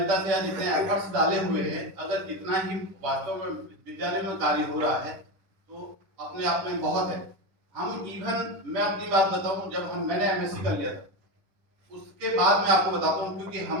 से या जितने एफर्ट्स डाले हुए हैं, अगर कितना ही वास्तव में विद्यालय में कार्य हो रहा है तो अपने आप में बहुत है। हम इवन मैं अपनी बात बताऊं, जब मैंने MSc कर लिया था, उसके बाद मैं आपको बताता हूं, क्योंकि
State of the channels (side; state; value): left; late; 10 ms